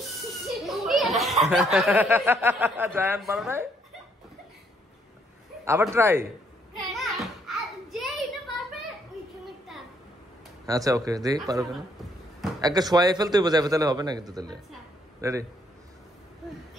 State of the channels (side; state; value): both; normal; correlation 0.69